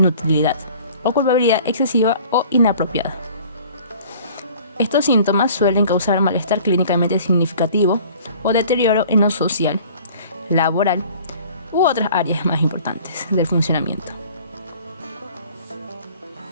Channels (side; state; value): both; inverted; correlation -0.49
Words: o culpabilidad excesiva o inapropiada. Estos síntomas suelen causar malestar clínicamente significativo o deterioro en lo social, laboral u otras áreas más importantes del funcionamiento.